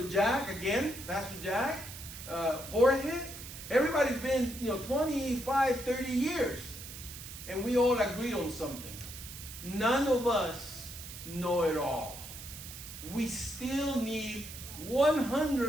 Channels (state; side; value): noise; right; hiss, 12 dB below the sound